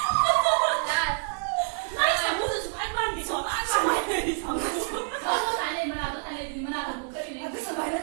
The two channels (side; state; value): left; silent; digital silence